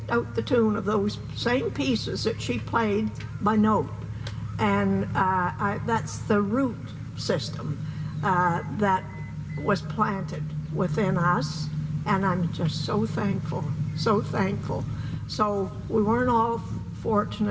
out the tune of those same pieces that she played by note. And that's the root system that was planted within us. And I'm just so thankful, so thankful. So we weren't all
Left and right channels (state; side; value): identical; both; correlation 1.00